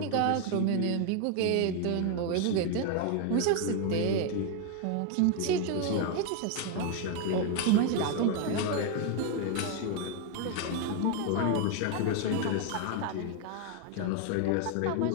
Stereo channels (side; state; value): both; different; correlation 0.01